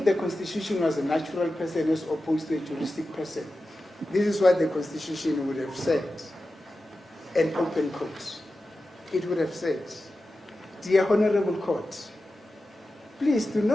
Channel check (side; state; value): both; normal; correlation 0.93